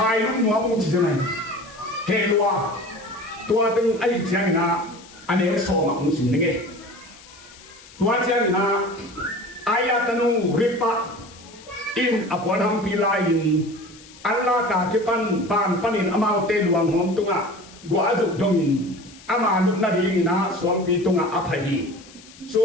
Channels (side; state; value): left; noise; hiss, 22 dB below the sound